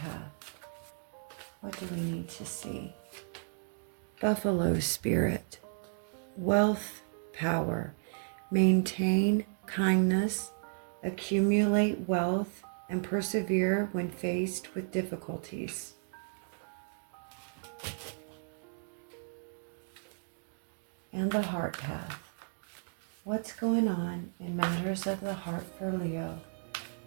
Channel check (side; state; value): left; silent; digital silence